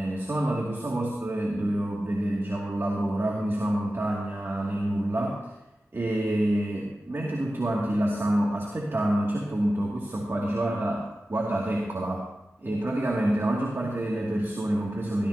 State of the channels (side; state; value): both; normal; correlation 0.94